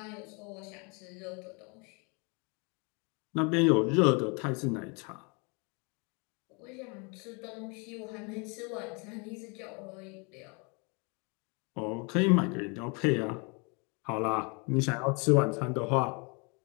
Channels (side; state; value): right; quieter; 32.3 dB